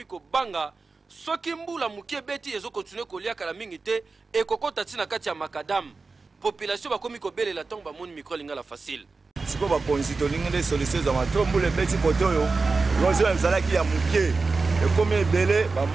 kobanga soki mbula mukie beti ezokontinue kolia kala mingi te ekokota tina kati ya makadam. Population bakomi kobelela ntango bamoni micro lingala facile. Siko bakonzi tolingi nde solution za matombula beti kote oyo érosion ezalaki ya mukie ekomi ebele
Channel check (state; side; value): quieter; left; 4.0 dB